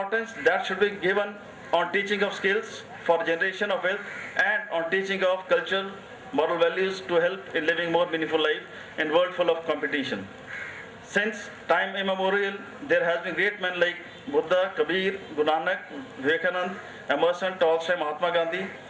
that should be given on teaching of skills for generation of wealth and on teaching of cultural, moral values to help in living more meaningful life in a world full of competition. Since time immemorial, there has been great men like Buddha, Kabir, Guru Nanak, Vivekanand, Emerson, Tolstoy, Mahatma Gandhi,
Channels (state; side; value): identical; both; correlation 1.00